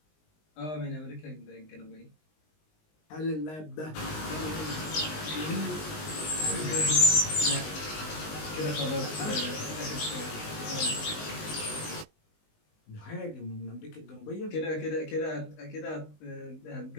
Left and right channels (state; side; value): late; right; 19 ms